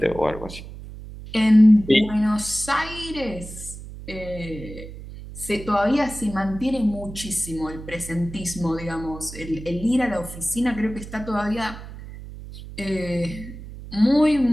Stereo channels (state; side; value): noise; right; hum, 13 dB below the sound